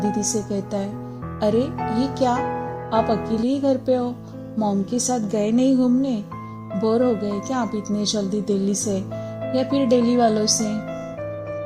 से कहता है, अरे ये क्या, आप अकेले ही घर पे हो? मॉम के साथ गए नहीं घूमने? बोर हो गए क्या आप इतने जल्दी दिल्ली से, या फिर दिल्ली वालों से?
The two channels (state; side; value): identical; both; correlation 1.00